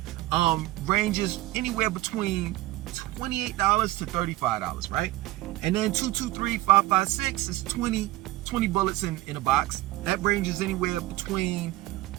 Ranges anywhere between $28 to $35, right? And then 2.23, 5.56 is 20 bullets in a box. That ranges anywhere between,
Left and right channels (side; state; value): left; quieter; 17.5 dB